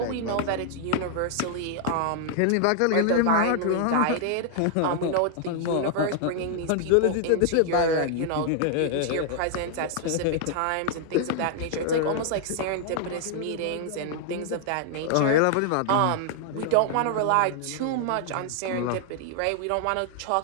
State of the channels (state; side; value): different; both; correlation 0.00